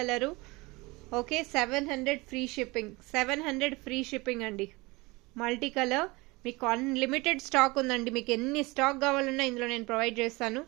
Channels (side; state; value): left; quieter; 23.8 dB